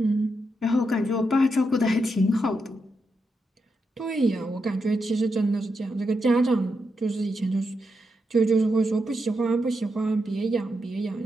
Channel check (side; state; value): both; normal; correlation 0.84